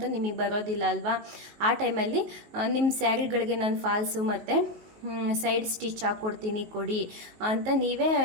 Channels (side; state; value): left; late; 19 ms